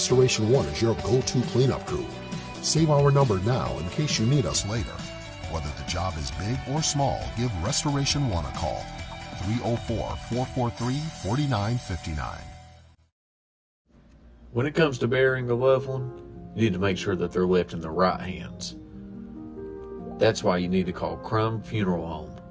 One is your go-to cleanup crew. Save our number now in case you need us later. Whether the job is big or small, give Restoration One a call. 304-443-4959. When it comes to burying a loved one, you need to make sure that they're left in the right hands. That's why you need to call Crum Funeral Home,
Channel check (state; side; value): identical; both; correlation 1.00